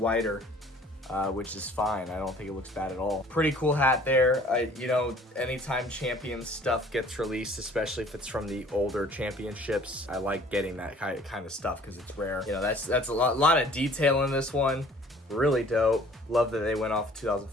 Which is fine. I don't think it looks bad at all. Pretty cool hat there. You know, anytime Champions stuff gets released, especially if it's from the older championships, I like getting that kind of stuff because it's rare. You know, that's a lot of detail in this one. Really dope. Love that they went off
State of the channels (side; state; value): both; normal; correlation 0.53